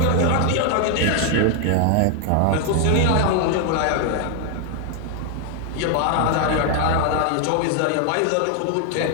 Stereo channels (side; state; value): both; different; correlation 0.00